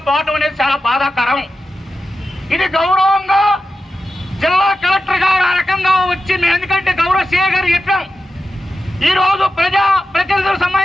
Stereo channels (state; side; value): normal; both; correlation 0.92